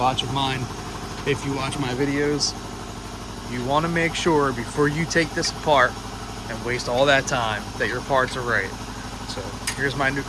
of mine. If you watch my videos, you want to make sure before you take this apart and waste all that time that your parts are right. So here's my new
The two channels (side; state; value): both; identical; correlation 1.00